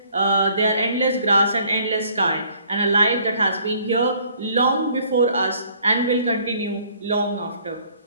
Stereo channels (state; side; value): inverted; both; correlation -0.60